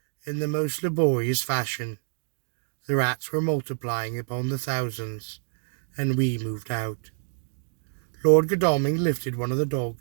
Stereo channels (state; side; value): silent; left; digital silence